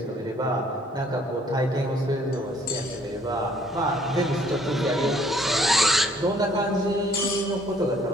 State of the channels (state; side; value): normal; both; correlation 0.62